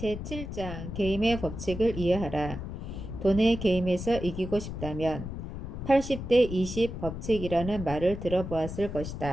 제7장 게임의 법칙을 이해하라. 돈의 게임에서 이기고 싶다면 80대 20 법칙이라는 말을 들어보았을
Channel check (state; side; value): noise; left; rumble, 8 dB below the sound